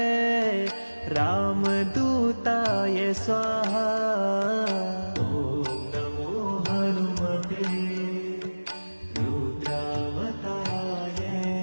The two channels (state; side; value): inverted; both; correlation -1.00